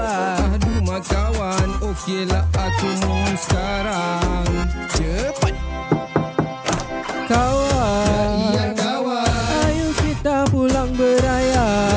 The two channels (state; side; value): identical; both; correlation 1.00